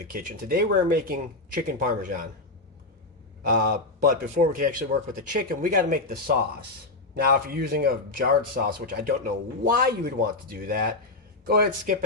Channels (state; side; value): quieter; right; 3.1 dB